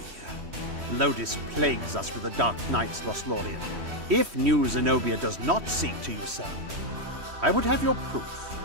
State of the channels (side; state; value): left; late; 3.1 ms